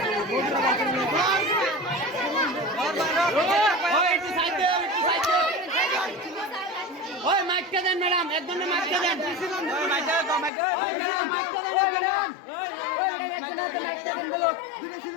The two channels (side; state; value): right; drops out; at 10.5 s